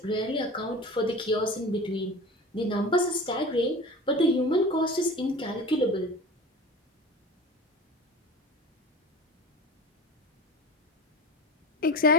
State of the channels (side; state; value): both; normal; correlation 0.35